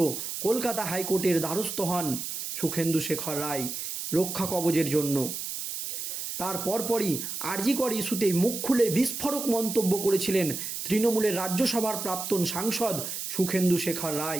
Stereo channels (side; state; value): right; noise; hiss, 5 dB below the sound